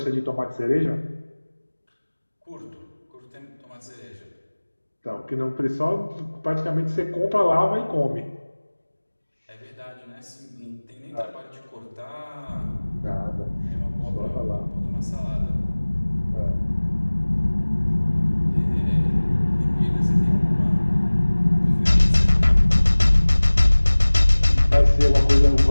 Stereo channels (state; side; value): inverted; both; correlation -1.00